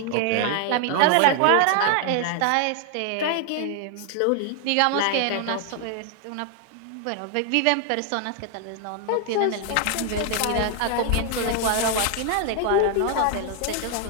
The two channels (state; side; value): different; both; correlation 0.00